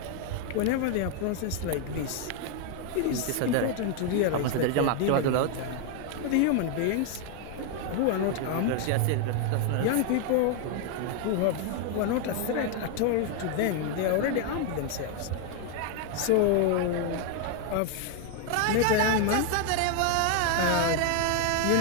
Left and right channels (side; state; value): both; different; correlation 0.01